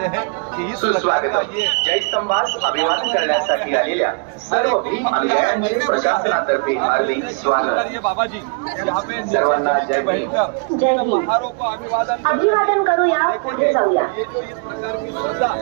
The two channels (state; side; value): quieter; left; 36.9 dB